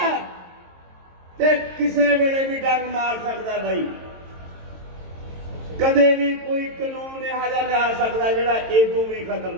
ਤੇ ਕਿਸੇ ਵੇਲੇ ਵੀ ਡੰਗ ਮਾਰ ਸਕਦਾ। ਬਈ ਕਦੇ ਵੀ ਕੋਈ ਕਾਨੂੰਨ ਇਹੋ ਜਿਹਾ ਲਿਆ ਸਕਦਾ ਜਿਹੜਾ ਇਦੋਂ ਵੀ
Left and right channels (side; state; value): left; late; 23 ms